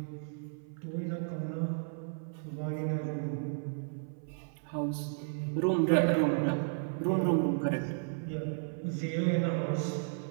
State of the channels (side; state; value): left; silent; 55 dB below the other